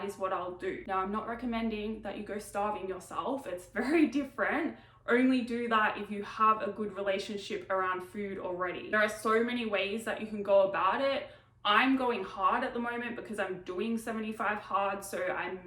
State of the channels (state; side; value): identical; both; correlation 1.00